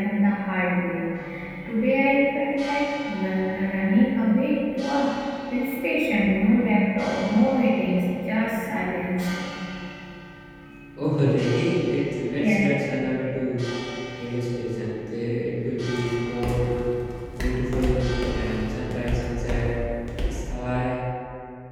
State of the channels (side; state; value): both; identical; correlation 1.00